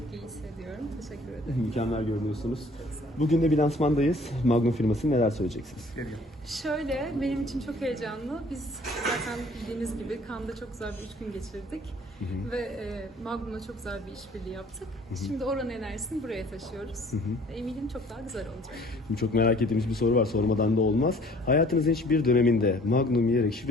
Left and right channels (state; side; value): normal; both; correlation 0.55